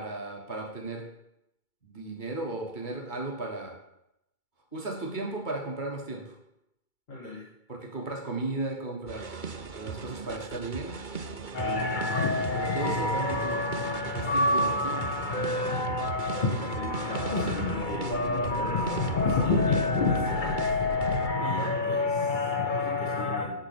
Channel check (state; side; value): late; right; 2.3 ms